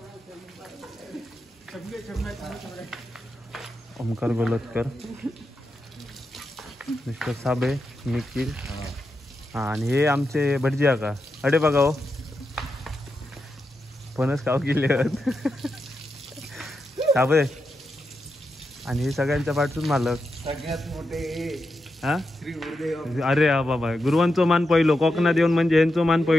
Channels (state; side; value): normal; both; correlation 0.87